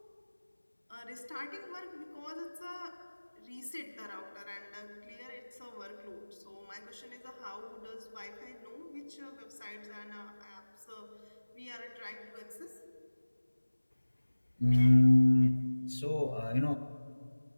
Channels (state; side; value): inverted; both; correlation -1.00